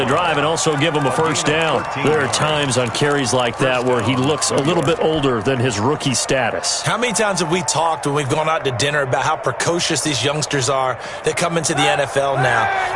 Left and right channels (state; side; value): identical; both; correlation 1.00